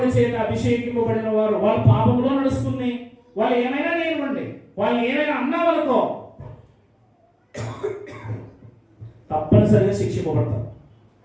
చేత అభిషేకింపబడిన వారు వాళ్ళ పాపంలో నడుస్తుంది. వాళ్ళు ఏమైనా లేనివ్వండి, వాళ్ళు ఏమైనా అన్నా వాళ్ళకో తప్పనిసరిగా శిక్షింపబడతారు.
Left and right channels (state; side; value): identical; both; correlation 1.00